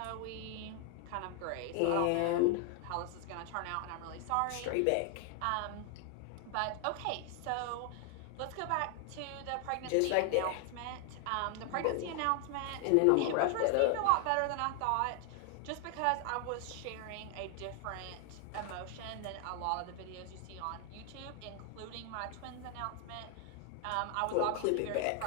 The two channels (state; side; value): different; both; correlation 0.00